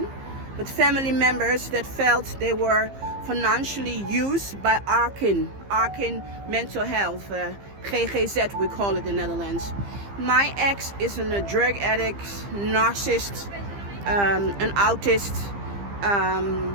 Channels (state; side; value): late; left; 15 ms